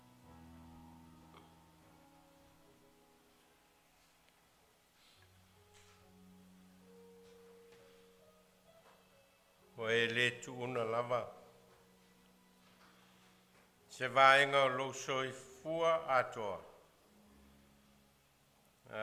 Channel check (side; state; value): both; identical; correlation 1.00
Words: O e le tuuna lava. Se vaenga o lo soifua atoa.